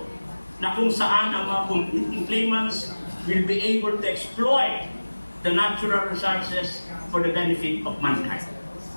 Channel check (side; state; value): both; inverted; correlation -1.00